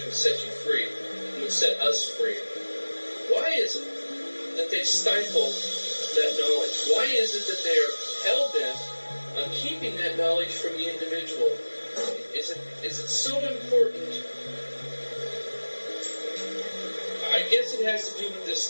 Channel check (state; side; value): inverted; both; correlation -1.00